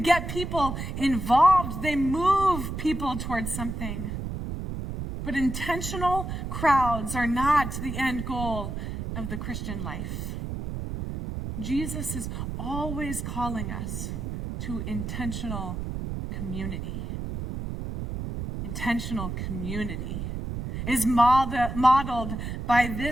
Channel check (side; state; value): right; noise; rumble, 5 dB below the sound